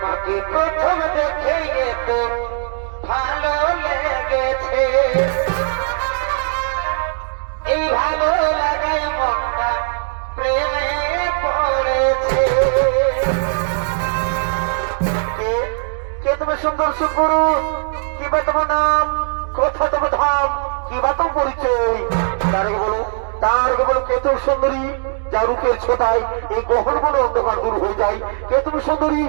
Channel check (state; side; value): silent; left; digital silence